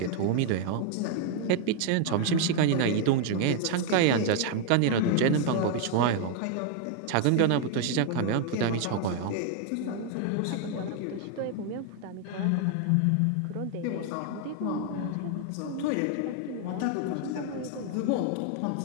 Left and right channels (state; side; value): different; both; correlation 0.00